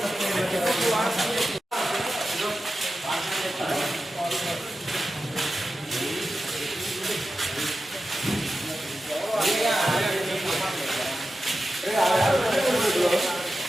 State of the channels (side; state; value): both; normal; correlation 0.92